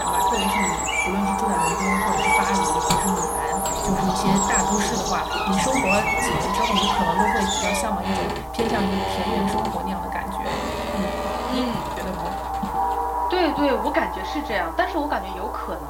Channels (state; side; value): identical; both; correlation 1.00